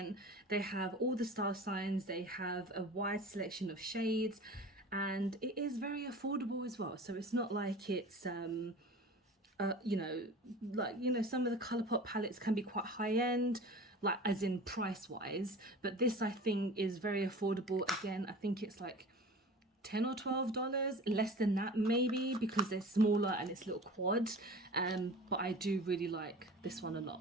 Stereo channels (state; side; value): normal; both; correlation 0.39